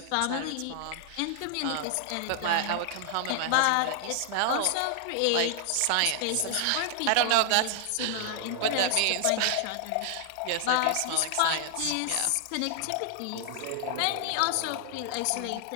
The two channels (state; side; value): different; both; correlation 0.00